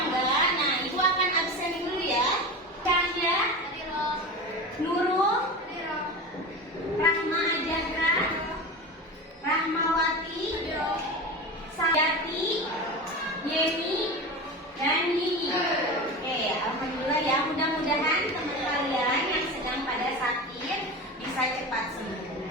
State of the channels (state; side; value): normal; both; correlation 0.27